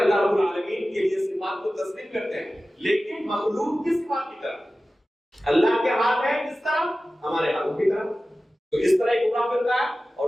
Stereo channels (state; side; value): normal; both; correlation 0.96